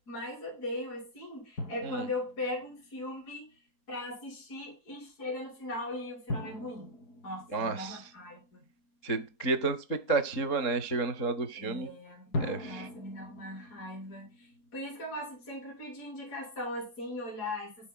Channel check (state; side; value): late; right; 4.2 ms